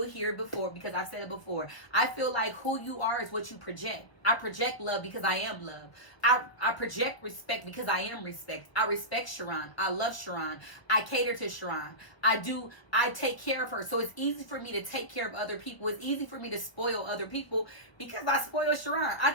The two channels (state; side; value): late; right; 1.2 ms